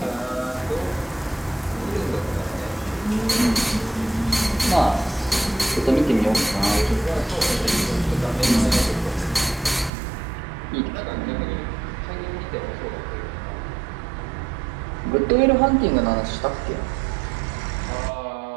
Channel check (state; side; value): drops out; left; at 9.9 s